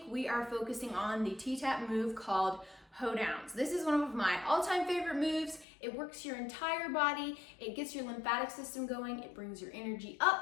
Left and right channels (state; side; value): drops out; right; at 5.7 s